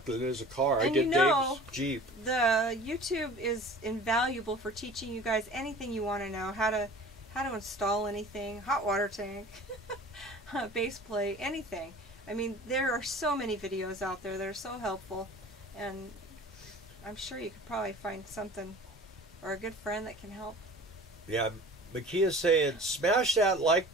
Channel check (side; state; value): both; normal; correlation 0.43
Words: than it is a car. I did Dave's Jeep. The YouTube is invaluable for teaching you guys anything you want to know. How to install anything, hot water tank, base plate, anything. I mean, there are so many videos out there that are so helpful, and I'm sure you could probably find something or a good friend that can help. Yeah, Makia's saying, smash that like